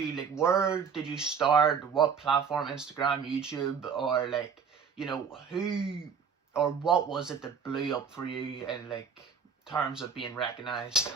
where did you start? What platform? Instagram, YouTube, or who or what was it that blew up for you in terms of being recognized?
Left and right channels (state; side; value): quieter; left; 6.3 dB